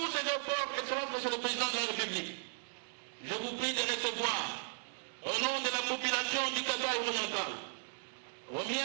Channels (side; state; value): left; silent; digital silence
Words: ces efforts, Excellence Monsieur le Président de la République, je vous prie de recevoir au nom de la population du Kasaï oriental, au